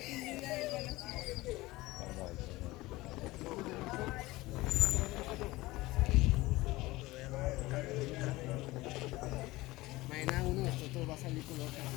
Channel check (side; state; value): right; quieter; 19.7 dB